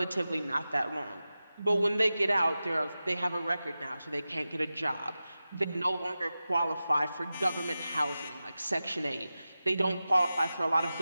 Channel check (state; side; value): inverted; both; correlation -0.94